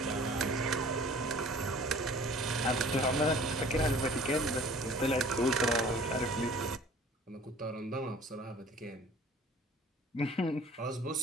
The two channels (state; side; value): normal; both; correlation 0.49